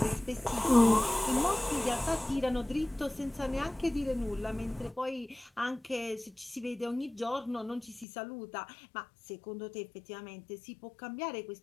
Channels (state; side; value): drops out; right; at 8.1 s